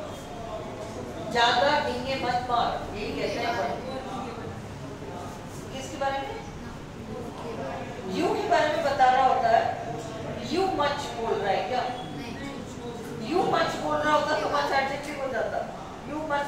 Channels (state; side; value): identical; both; correlation 1.00